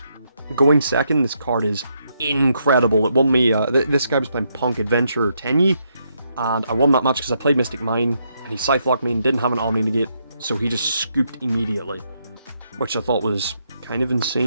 Going second, this card is incredible. It won me, this guy was playing Punk Adventure Tenyi, and I won that match because I played Mystic Mine, and he Scythe-locked me and didn't have an Omni negate, so he just scooped immediately, which I thought was kind of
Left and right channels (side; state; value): both; inverted; correlation -0.77